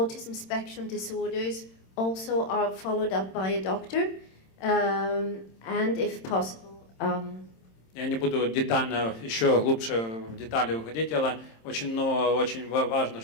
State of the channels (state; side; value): late; right; 26 ms